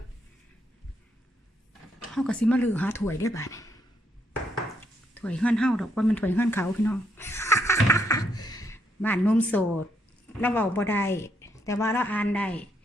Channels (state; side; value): normal; both; correlation 0.75